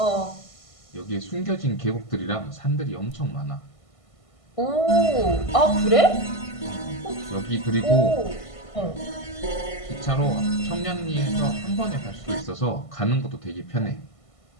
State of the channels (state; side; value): late; right; 1.5 ms